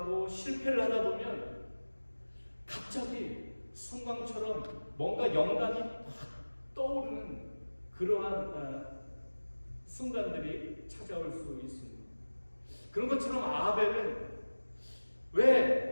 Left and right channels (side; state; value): both; inverted; correlation -1.00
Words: 실패를 하다 보면 갑자기 순간처럼 뭔가 영감이 막 떠오르는 그러한 순간들이 찾아올 수 있습니다. 그런 것처럼 아벨은